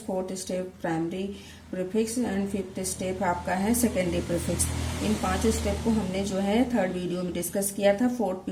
fourth step primary prefix and fifth step आपका है सेकेंडरी प्रीफिक्स। इन 5 स्टेप को हमने जो है थर्ड वीडियो में डिस्कस किया था। फोर्थ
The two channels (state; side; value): identical; both; correlation 1.00